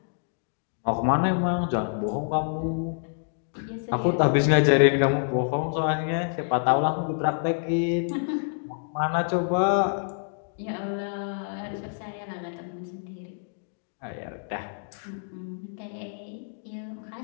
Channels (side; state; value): right; silent; digital silence